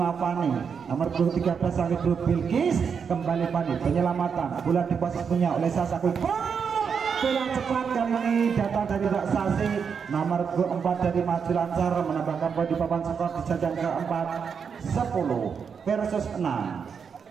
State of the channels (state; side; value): quieter; left; 6.5 dB